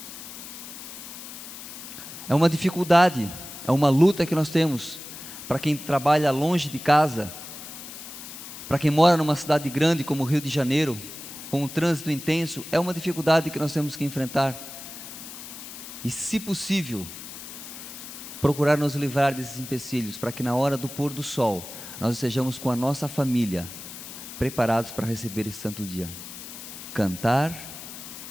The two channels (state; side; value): noise; left; hiss, 12 dB below the sound